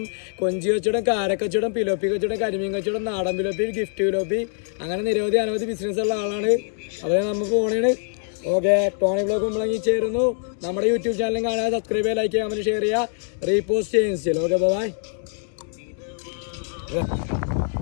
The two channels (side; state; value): right; silent; 57 dB below the other